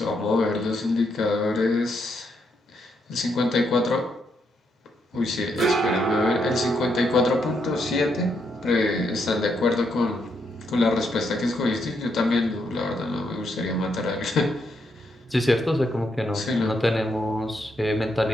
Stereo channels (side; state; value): both; normal; correlation 0.78